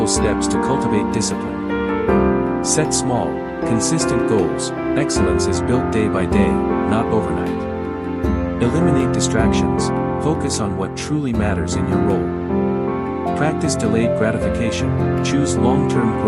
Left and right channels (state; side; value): identical; both; correlation 1.00